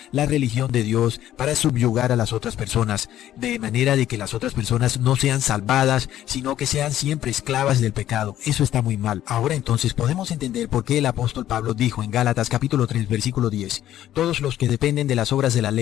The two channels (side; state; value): right; quieter; 12.4 dB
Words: la religión de Dios para subyugar a las otras personas, de manera de que las otras personas no sean salvadas, sino que sean siempre esclavas del pecado. Eso está muy mal. Ahora entonces podemos entender por qué el apóstol Pablo dijo en Gálatas capítulo 3 versículo 10, todos los que dependen de las obras de la